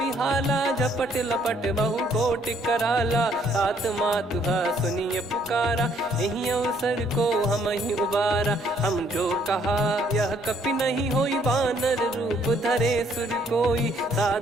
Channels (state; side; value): normal; both; correlation 0.66